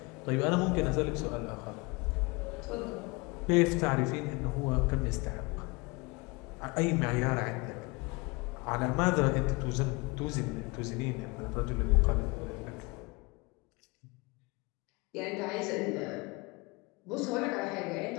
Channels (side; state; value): right; quieter; 26.7 dB